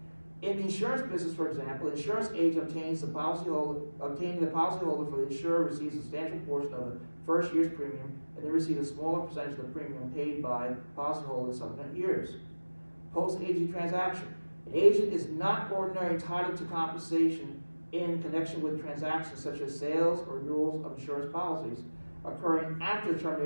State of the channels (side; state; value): both; inverted; correlation -1.00